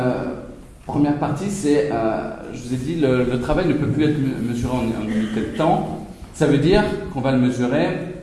partie, c'est, je vous ai dit, le travail ne peut plus être mesuré en unité de temps. Ça veut dire qu'on va le mesurer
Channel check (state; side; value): identical; both; correlation 1.00